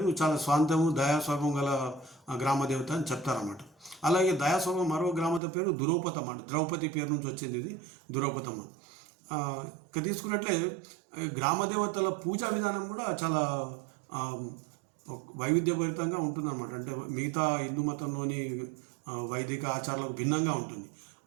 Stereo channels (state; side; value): drops out; left; at 5.4 s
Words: చాలా స్వాంతము దయాస్వభావం గల గ్రామ దేవత అని చెప్తారన్నమాట. అలాగే దయాస్వభావం మరో గ్రామత పేరు దురౌపతమ్మ, అంటే ద్రౌపది పేరు నుంచి వచ్చింది ఇది దురౌపతమ్మ. ఇక తీసుకున్నట్లే గ్రామదేవతల పూజా విధానం కూడా చాలా వైవిధ్యభరితంగా ఉంటుందన్నమాట. అంటే మిగతా హిందూ మతంలోని వైదిక ఆచారాలకు భిన్నంగా ఉంటుంది.